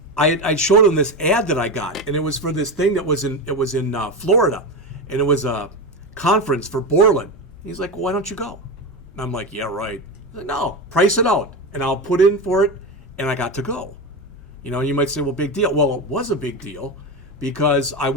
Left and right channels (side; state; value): both; normal; correlation 0.18